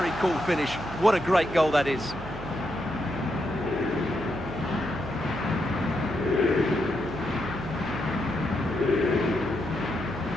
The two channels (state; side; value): noise; right; hum, 11 dB below the sound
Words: cool finish. What a great goal that is.